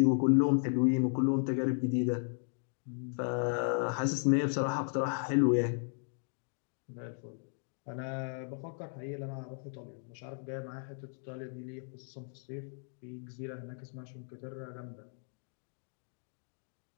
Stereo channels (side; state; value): right; silent; 54 dB below the other